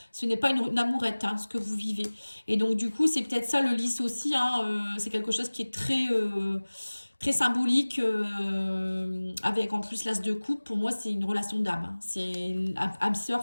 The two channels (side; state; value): both; inverted; correlation -1.00